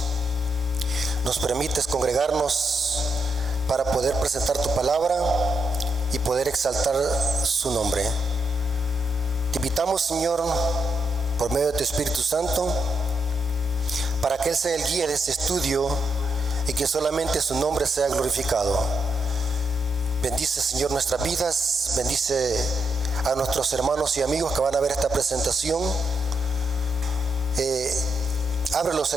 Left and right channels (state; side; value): normal; both; correlation 0.81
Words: nos permites congregarnos para poder presentar tu palabra y poder exaltar su nombre. Te invitamos, Señor, por medio de tu Espíritu Santo, para que Él sea el guía de este estudio y que solamente su nombre sea glorificado. Bendice, Señor, nuestras vidas, bendice a nuestros hermanos y amigos que van a ver esta presentación. Ábrelos